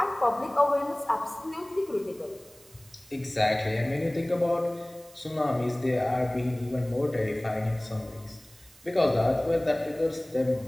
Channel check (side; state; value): right; noise; hiss, 25 dB below the sound